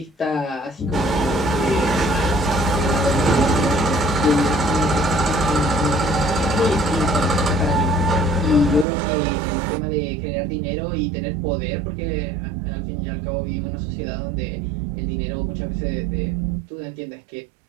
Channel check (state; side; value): drops out; left; at 8.8 s